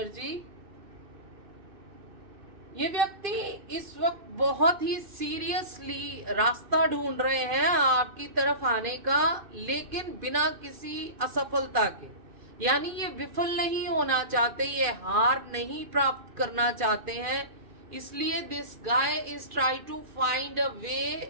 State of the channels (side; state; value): left; late; 2.4 ms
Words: ये व्यक्ति इस वक्त बहुत ही सीरियसली रास्ता ढूंढ रहे हैं आपकी तरफ आने का, लेकिन बिना किसी असफलता के। यानी ये विफल नहीं होना चाहते, ये हार नहीं प्राप्त करना चाहते हैं, इसलिए this guy is try to find a